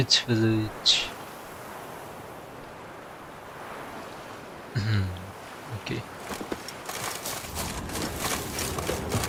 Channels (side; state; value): both; identical; correlation 1.00